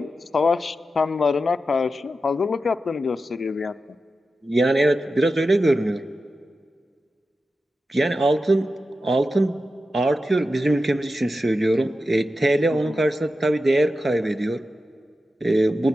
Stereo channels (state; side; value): normal; both; correlation 0.91